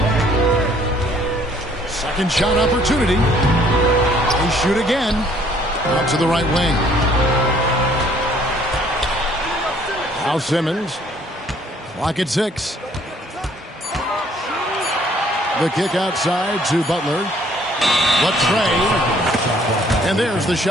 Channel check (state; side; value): normal; both; correlation 0.60